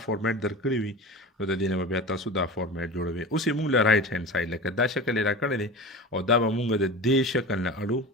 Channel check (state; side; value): normal; both; correlation 0.32